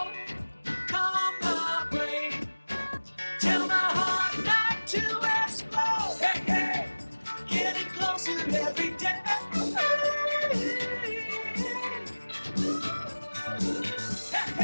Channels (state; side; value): inverted; both; correlation -1.00